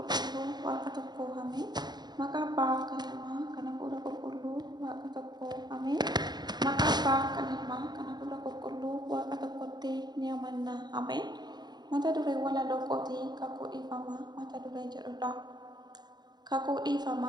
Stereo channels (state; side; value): late; left; 0.20 ms